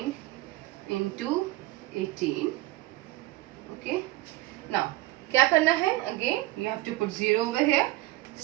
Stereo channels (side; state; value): left; quieter; 18.1 dB